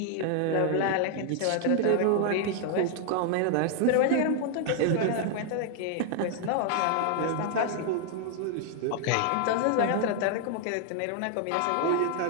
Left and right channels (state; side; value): different; both; correlation 0.00